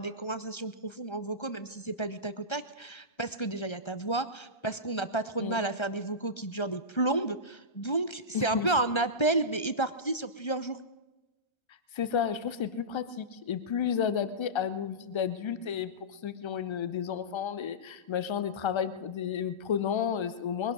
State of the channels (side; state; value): right; late; 1.3 ms